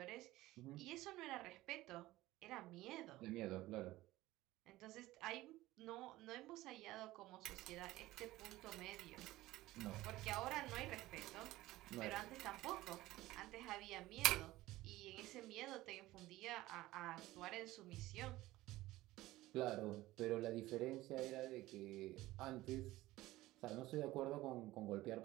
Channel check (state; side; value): quieter; left; 17.4 dB